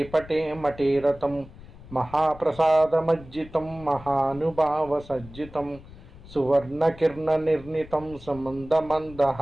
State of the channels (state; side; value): noise; left; rumble, 19 dB below the sound